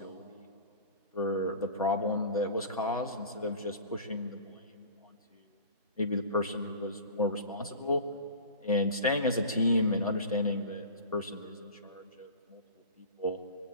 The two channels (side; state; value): both; inverted; correlation -0.37